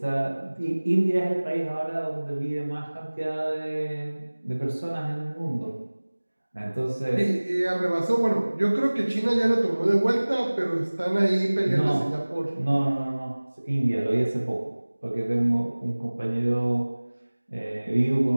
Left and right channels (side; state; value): both; inverted; correlation -1.00